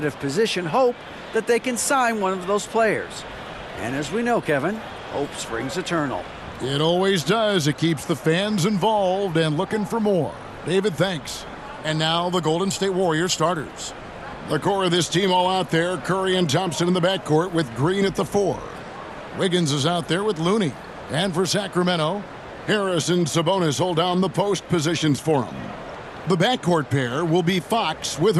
position hope that they can sign one of those players. And as we know, Kevin, hope springs eternal. It always does. It keeps the fans involved and looking for more. David, thanks. And now the Golden State Warriors starters. The core of this team all out there, Curry and Thompson in the backcourt with Green at the 4. Wiggins is out there with Looney. And for Sacramento, Harris and Sabonis hold down the post positions for him. The backcourt pair will be Fox with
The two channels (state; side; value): identical; both; correlation 1.00